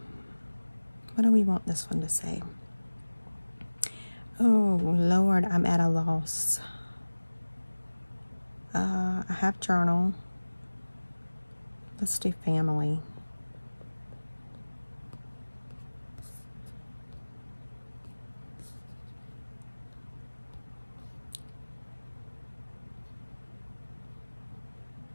What do we want this one to say? Oh, Lord, I'm at a loss. I have journal. Let's do family.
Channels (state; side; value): inverted; both; correlation -1.00